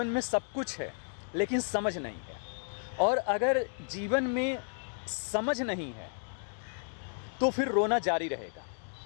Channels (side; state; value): right; silent; digital silence